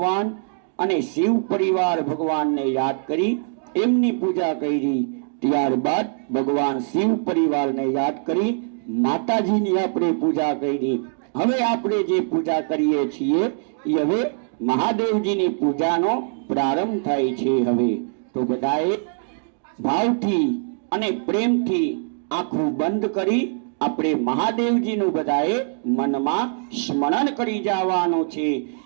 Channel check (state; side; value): silent; left; digital silence